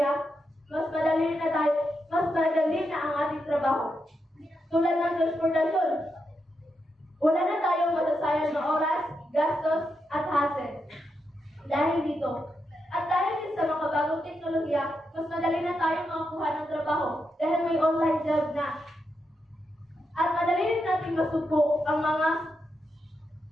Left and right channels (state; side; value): normal; both; correlation 0.84